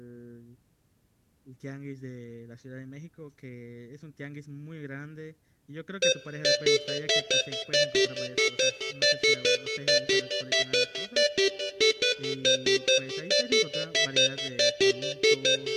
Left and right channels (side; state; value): both; identical; correlation 1.00